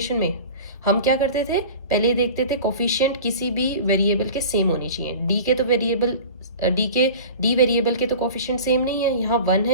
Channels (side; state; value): both; inverted; correlation -0.37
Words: में. हम क्या करते थे, पहले देखते थे कोफिशिएंट किसी भी वेरिएबल के सेम होने चाहिए. डी के तो वेरिएबल डी वेरिएबल के तो कोफिशिएंट सेम नहीं है, यहाँ 1